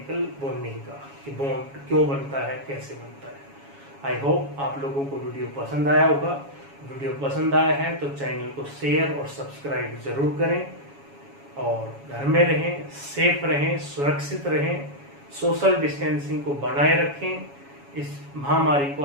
बॉन्डिंग का, कि बॉन्ड क्यों बनता है, कैसे बनता है। आई होप आप लोगों को वीडियो पसंद आया होगा। वीडियो पसंद आया है तो चैनल को शेयर और सब्सक्राइब जरूर करें, और घर में रहें, सेफ रहें, सुरक्षित रहें, सोशल डिस्टेंसिंग को बनाए रखें, इस महामारी को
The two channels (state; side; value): late; left; 7.2 ms